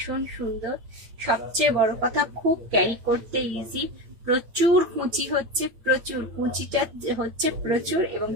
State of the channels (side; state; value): left; late; 8.7 ms